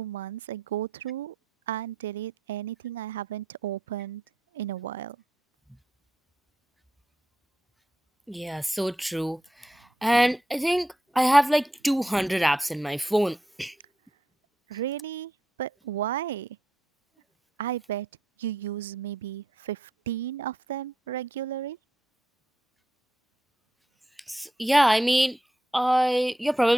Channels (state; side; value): normal; both; correlation 0.84